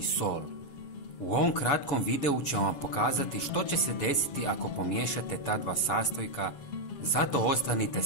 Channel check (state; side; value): late; right; 7.0 ms